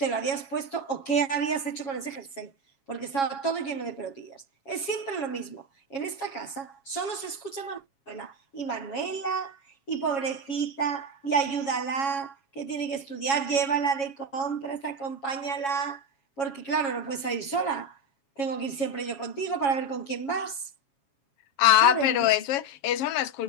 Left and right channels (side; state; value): right; late; 7.3 ms